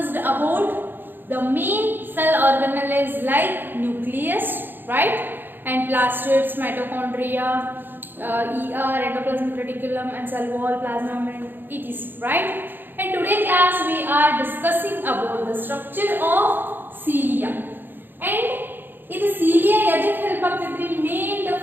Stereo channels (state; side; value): late; left; 0.095 ms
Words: about the main cell organelles like nucleus, right, and plastids, mitochondria, endoplasmic reticulum and cell wall, plasma membrane, etc., right. And today class we are discussing about the structure of cilia. And ಇದು cilia ಎದಕ್ಕೆ ಹೆಲ್ಪ್ ಆಗ್ತೈತ್ರಿ? Main the